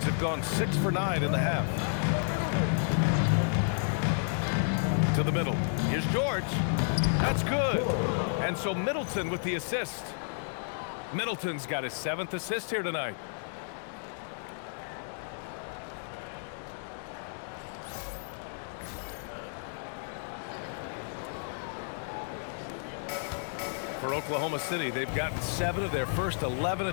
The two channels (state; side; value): silent; right; digital silence